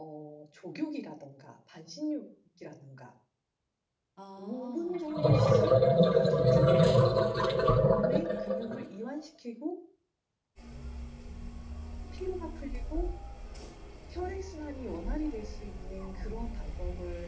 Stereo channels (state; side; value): identical; both; correlation 1.00